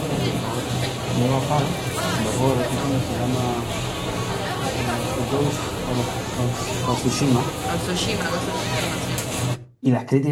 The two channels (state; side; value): identical; both; correlation 1.00